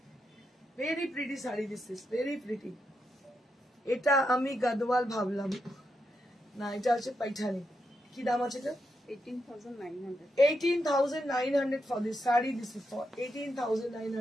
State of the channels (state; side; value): normal; both; correlation 0.84